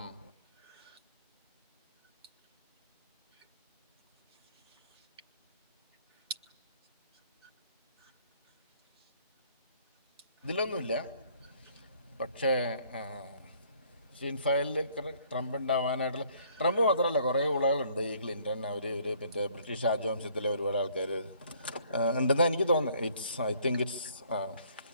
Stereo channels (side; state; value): both; inverted; correlation -0.61